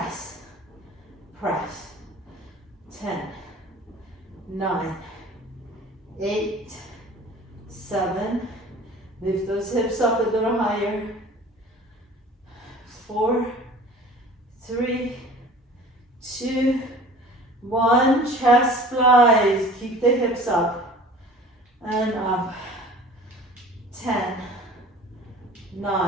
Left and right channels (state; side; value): normal; both; correlation 0.44